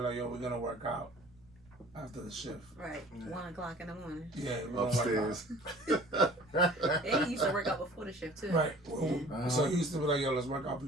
like, yo, we're gonna work out after the shift. Right. Yeah. 1 o'clock in the morning. Yeah, we're gonna Upstairs. work out. And he used to work out before the shift too. Right. So he used to be like, yo, let's work out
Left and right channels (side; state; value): right; noise; rumble, 28 dB below the sound